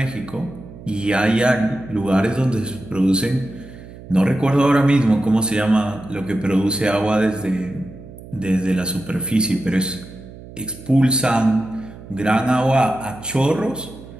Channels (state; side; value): noise; right; hum, 17 dB below the sound